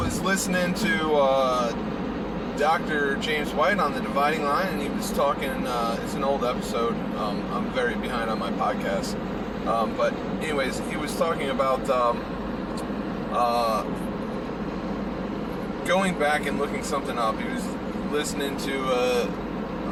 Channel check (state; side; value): identical; both; correlation 1.00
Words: listening to Dr. James White on the Dividing Line, and he was talking, it's an old episode, I'm very behind on my podcast, but anyways, he was talking about going back and looking something up. He was listening to a